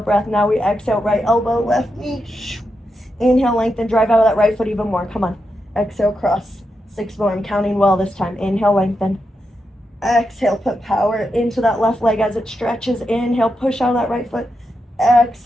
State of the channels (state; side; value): normal; both; correlation 0.86